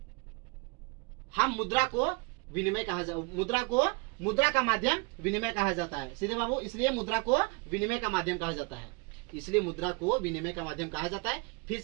हम मुद्रा को विनिमय मुद्रा का माध्यम विनिमय कहा जाता है। सीधे बाबू, इसलिए मुद्रा को विनिमय का माध्यम कहा जाता है, इसलिए मुद्रा को विनिमय का माध्यम कहा जाता है। फिर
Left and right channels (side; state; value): left; quieter; 29.6 dB